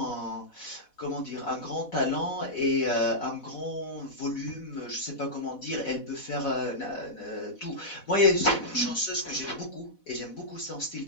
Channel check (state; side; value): late; right; 4.1 ms